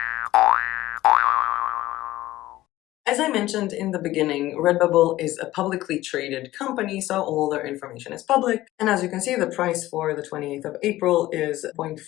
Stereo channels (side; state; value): right; quieter; 16.1 dB